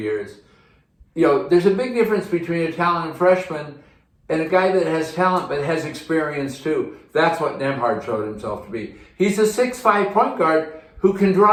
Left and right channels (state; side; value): identical; both; correlation 1.00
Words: There's a big difference between a talented freshman and a guy that has talent but has experience too. That's what Nebhart showed himself to be. He's a 6'5" point guard who can